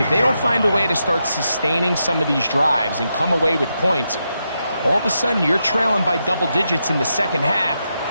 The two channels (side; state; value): both; inverted; correlation -0.84